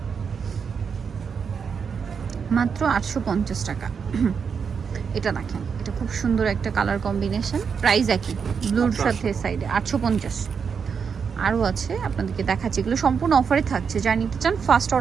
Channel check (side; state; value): left; quieter; 6.3 dB